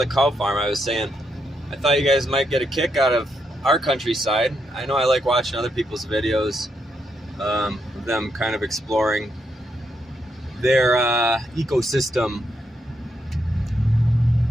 cow farm, I was saying, I thought you guys might get a kick out of our countryside. I know I like watching other people's videos of them kind of exploring their ecosystem.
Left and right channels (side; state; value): both; normal; correlation 0.79